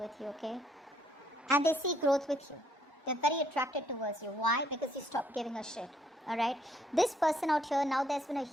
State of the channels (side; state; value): both; normal; correlation 0.68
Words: you, okay, and they see growth with you. They're very attracted towards you. Why? Because you stopped giving a shit. Alright, this person out here, now there's been a